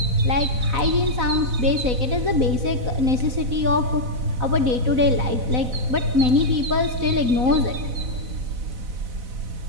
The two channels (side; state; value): left; late; 4.0 ms